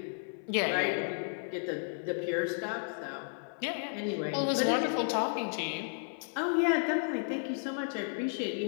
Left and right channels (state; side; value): silent; right; 56 dB below the other